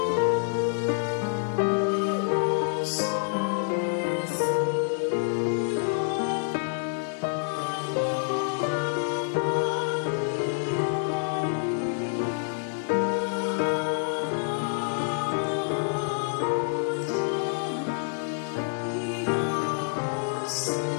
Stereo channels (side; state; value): right; silent; digital silence